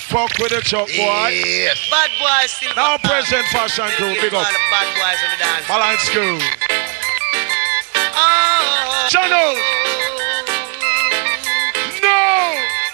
with the truck, boy. Yes. Bad boys, Silver. Now present fashion crew, big up. All the bad boys on the dance. Balance crew. Oh. Channel. No.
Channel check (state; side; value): quieter; left; 38.4 dB